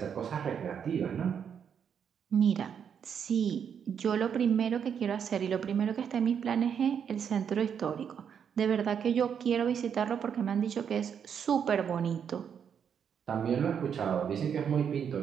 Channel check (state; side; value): quieter; left; 7.7 dB